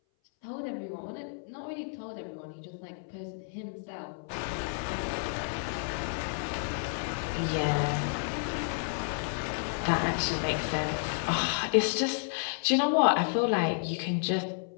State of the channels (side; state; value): right; silent; 57 dB below the other